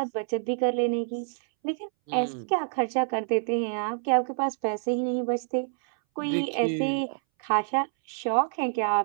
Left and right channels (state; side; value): silent; left; 60 dB below the other